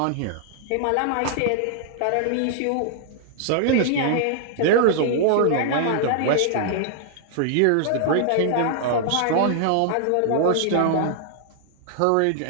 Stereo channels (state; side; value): different; both; correlation -0.01